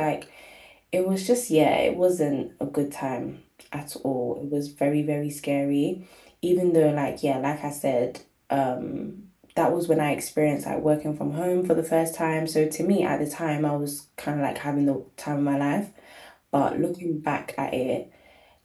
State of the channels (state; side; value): identical; both; correlation 1.00